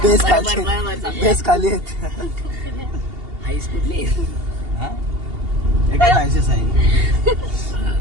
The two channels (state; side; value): late; left; 2.8 ms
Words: बेस खाली आहेत. आईस कुठली एकच आयसीस आहे.